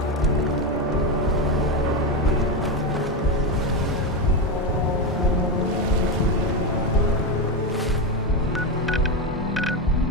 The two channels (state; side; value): normal; both; correlation 0.12